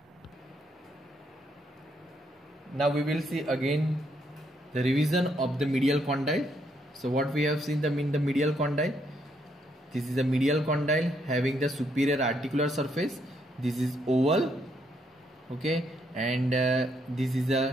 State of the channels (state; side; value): normal; both; correlation 0.74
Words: Now we will see again the revision of the medial condyle. So what we have seen in the medial condyle, this is a medial condyle having the superior articular surface. This is oval, okay, and this is